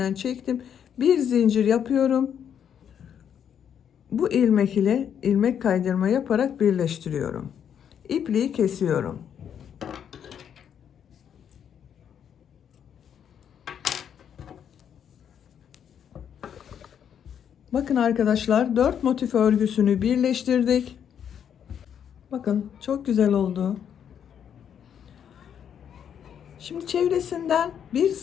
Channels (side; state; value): right; quieter; 8.6 dB